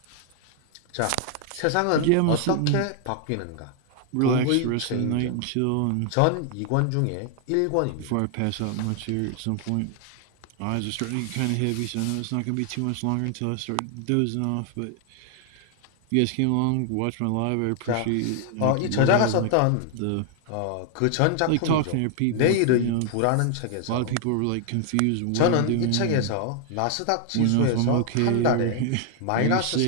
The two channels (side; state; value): both; different; correlation 0.00